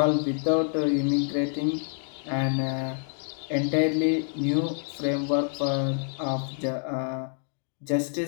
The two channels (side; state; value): right; silent; 60 dB below the other